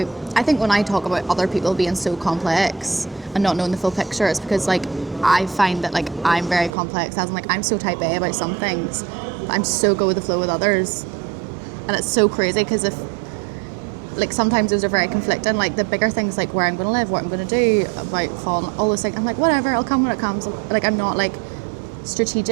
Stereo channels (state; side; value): drops out; left; at 6.7 s